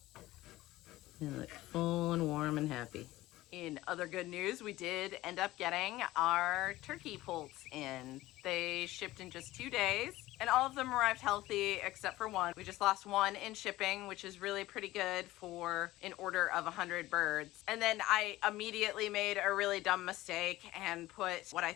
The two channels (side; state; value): right; quieter; 17.0 dB